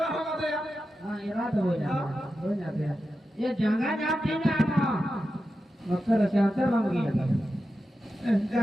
रहा दे हां इरा तो हो जाते हैं ये जगह जाते ना ना मकर चाहते बन गया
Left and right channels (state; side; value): normal; both; correlation 0.91